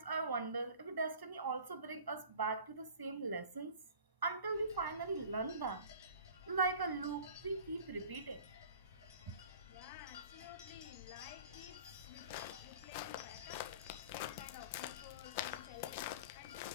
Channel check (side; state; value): both; inverted; correlation -0.44